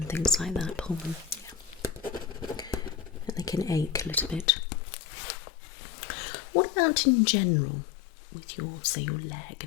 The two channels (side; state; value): right; drops out; at 4.5 s